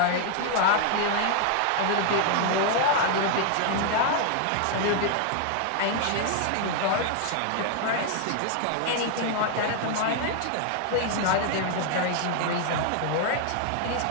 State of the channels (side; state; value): both; different; correlation 0.00